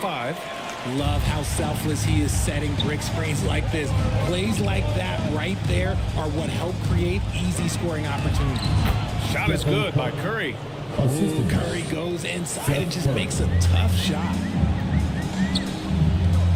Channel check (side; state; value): both; identical; correlation 1.00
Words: Love how selfless he is setting brick screens like this. Plays like that right there are what help create easy scoring opportunities. Shot is good by Curry. Ooh, Curry goes inside and just makes a tough shot.